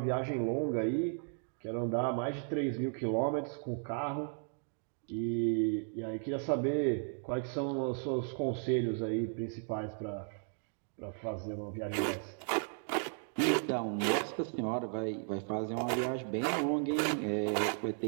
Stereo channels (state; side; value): silent; left; 54 dB below the other